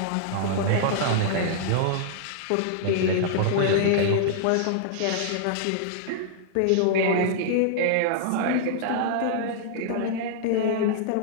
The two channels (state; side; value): different; both; correlation -0.01